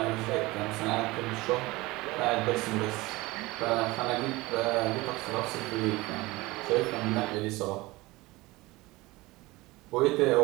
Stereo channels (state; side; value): quieter; left; 21.1 dB